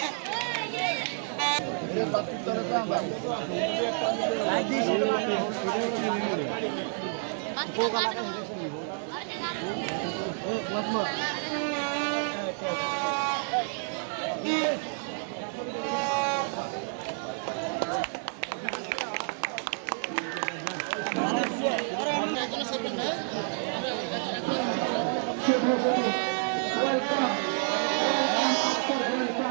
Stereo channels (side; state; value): left; silent; 58 dB below the other